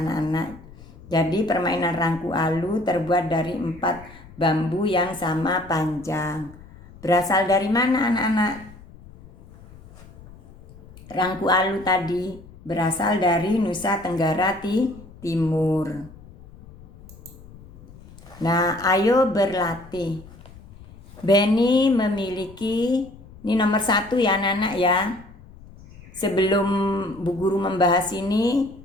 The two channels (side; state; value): left; noise; rumble, 21 dB below the sound